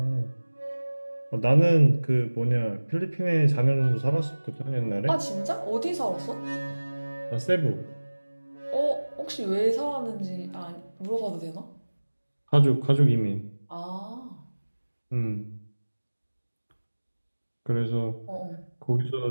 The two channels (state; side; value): inverted; both; correlation -1.00